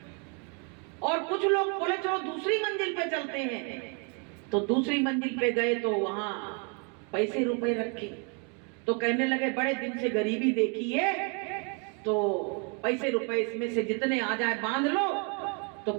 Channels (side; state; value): left; quieter; 36.3 dB